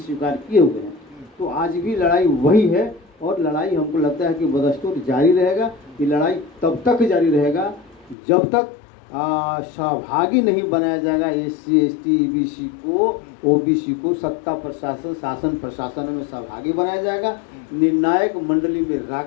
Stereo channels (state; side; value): drops out; right; at 8.2 s